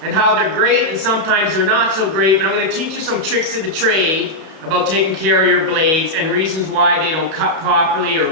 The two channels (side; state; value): left; late; 31 ms